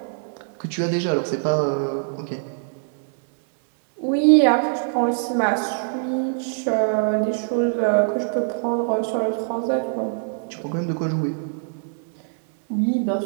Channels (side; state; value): left; silent; digital silence